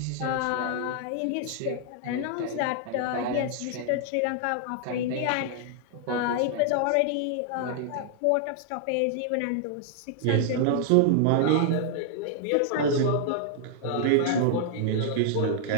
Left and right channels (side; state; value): both; different; correlation -0.01